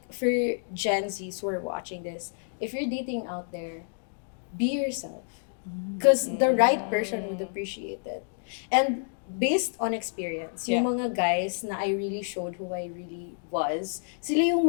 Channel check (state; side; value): silent; right; digital silence